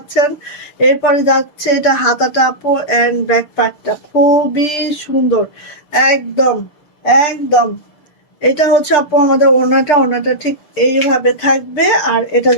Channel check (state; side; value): late; right; 6.7 ms